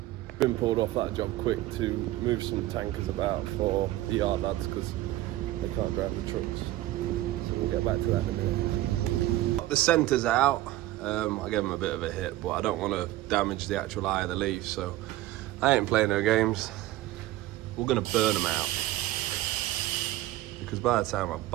Been pulled off that job quick to move some tankers about for the yard lads, because they can't drive the trucks. So we'll get back to that in a minute. Got the centres out. I gave them a bit of a hit, but I don't want to damage the actual eye of the leaf, so I ain't playing no games. We're gonna burn them out, because by the time I've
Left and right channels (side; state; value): left; quieter; 15.9 dB